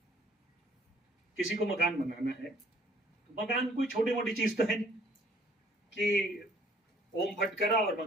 किसी को मकान बनाना है, तो मकान कोई छोटी मोटी चीज तो है नहीं कि ओम फट करा और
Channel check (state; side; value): normal; both; correlation 0.60